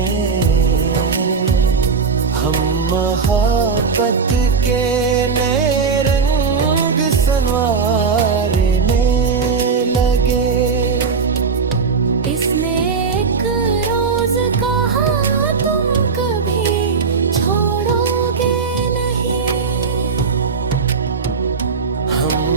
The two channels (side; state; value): left; quieter; 5.2 dB